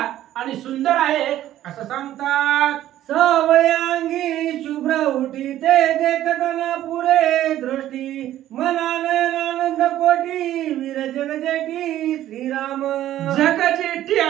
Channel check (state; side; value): quieter; left; 13.0 dB